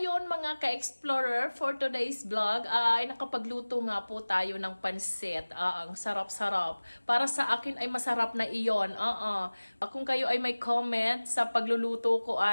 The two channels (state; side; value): inverted; both; correlation -1.00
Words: mga ka-explorer, for today's vlog ay nakapagluto nga po tayo ng pansit. Ang sarap-sarap. Para sa akin ay masarap na iyon. Kung kayo ay may comment sa pagluluto ko